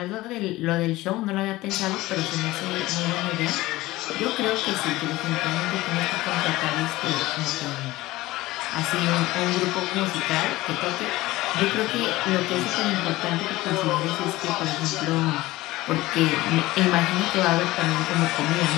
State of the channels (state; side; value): quieter; right; 18.3 dB